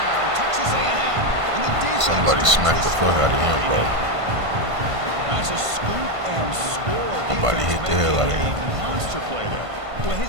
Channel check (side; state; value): left; late; 1.5 ms